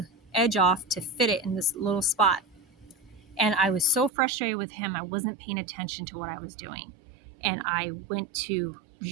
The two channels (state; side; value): drops out; left; at 4.1 s